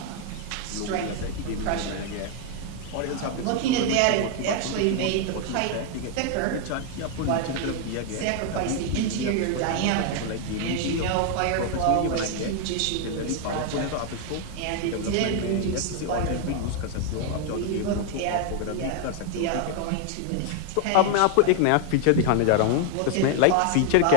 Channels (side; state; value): both; different; correlation 0.00